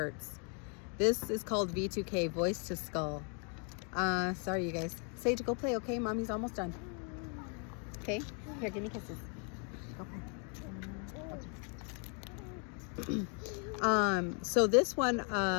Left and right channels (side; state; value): right; quieter; 38.9 dB